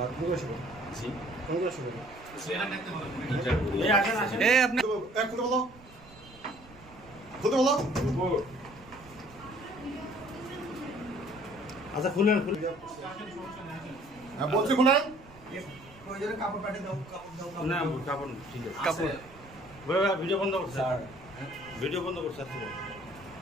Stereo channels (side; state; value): right; noise; rumble, 22 dB below the sound